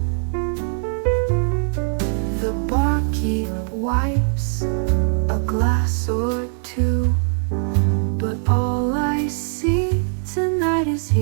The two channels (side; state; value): left; silent; digital silence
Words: The barkeep wipes a glass or two, but all I see tonight is